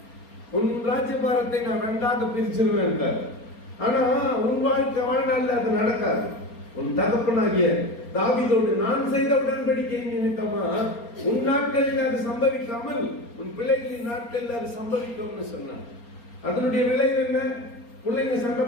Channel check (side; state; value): right; late; 4.3 ms